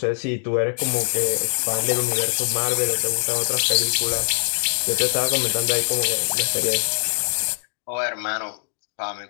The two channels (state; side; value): silent; right; digital silence